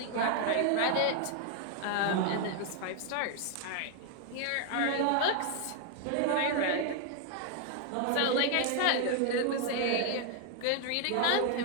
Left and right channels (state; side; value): different; both; correlation 0.00